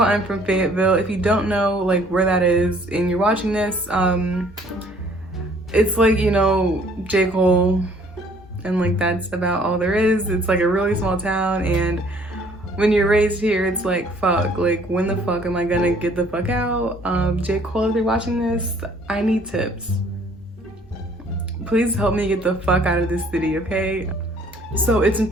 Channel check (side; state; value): both; normal; correlation 0.59